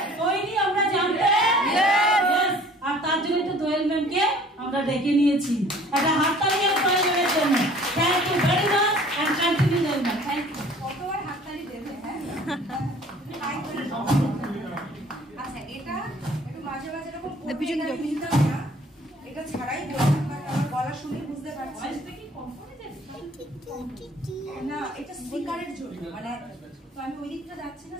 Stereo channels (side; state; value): both; normal; correlation 0.52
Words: জানতে, আর তার জন্য তো দোয়েল ম্যামকে আমরা ডেকে নিয়েছি। একটা হাততালি প্রয়োজনের জন্য। Thank you very much and continue Doyel ma'am. Thank you. কতবার হাততালি দেবে? হ্যাঁ আচ্ছা, এটা একটু মাঝে মাঝে এরকম নিতাম না, এটা ছাড়াই বললাম, কারণ আমার গলা শুনে বুঝতে পারছি না এটা স্পিকারের জন্য, মানে তো আমি ওই দিকটা যাচ্ছি না,